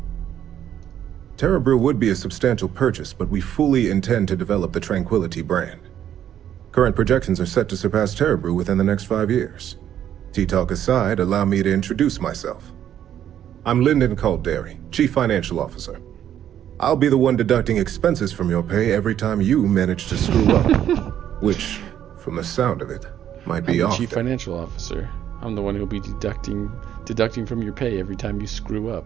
Terra Brew would be a substantial purchase, but we fully intend to develop the Tranquility brand. Current projections are set to surpass Terra Brew within the next 5 years. Tea-talk aside, allow me to introduce myself. I'm Lyndon Calderi, Chief Financial Officer. I'll be the one deducting expenses from your pay every time you manage to screw up. Nature. From the sound of it, might be I'm the often. Chief Financial Officer. I'm the one who'll be deducting from your pay every time you screw up.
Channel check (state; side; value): quieter; left; 10.4 dB